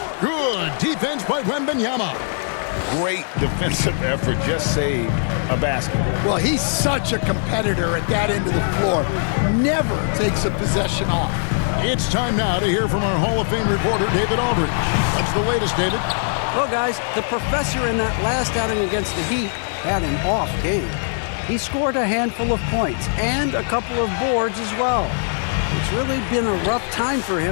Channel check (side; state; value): right; silent; digital silence